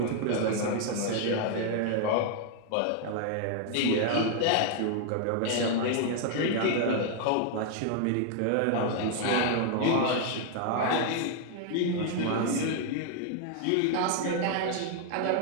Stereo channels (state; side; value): different; both; correlation 0.00